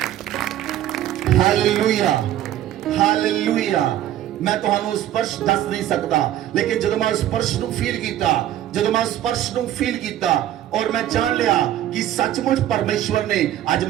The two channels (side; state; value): left; quieter; 12.4 dB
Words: Hallelujah, hallelujah. ਮੈਂ ਤੁਹਾਨੂੰ ਸਪਰਸ਼ ਦੱਸ ਨਹੀਂ ਸਕਦਾ, ਲੇਕਿਨ ਜਦੋਂ ਮੈਂ ਸਪਰਸ਼ ਨੂੰ ਫੀਲ ਕੀਤਾ, ਜਦੋਂ ਮੈਂ ਸਪਰਸ਼ ਨੂੰ ਫੀਲ ਕੀਤਾ ਔਰ ਮੈਂ ਜਾਣ ਲਿਆ ਕਿ ਸੱਚਮੁੱਚ ਪਰਮੇਸ਼ਵਰ ਨੇ ਅੱਜ